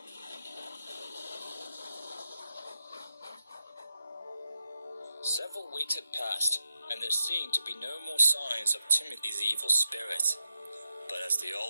Several weeks had passed, and there seemed to be no more signs of Timothy's evil spirit. But as the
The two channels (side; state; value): both; inverted; correlation -0.86